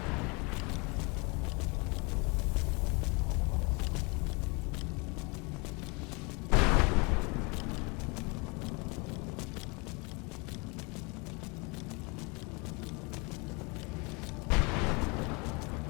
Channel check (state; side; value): quieter; right; 29.7 dB